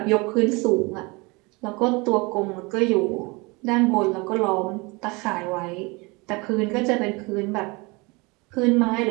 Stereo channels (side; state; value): left; quieter; 26.5 dB